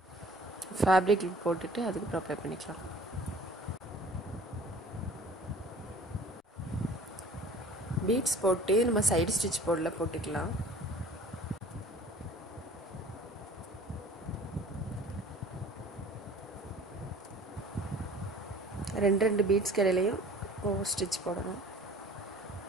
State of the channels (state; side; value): normal; both; correlation 0.48